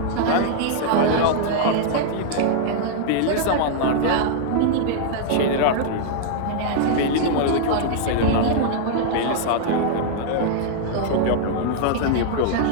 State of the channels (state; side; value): different; both; correlation -0.01